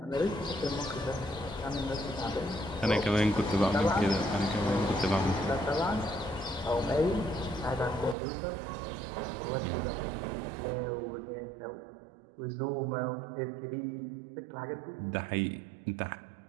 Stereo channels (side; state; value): left; drops out; at 8.2 s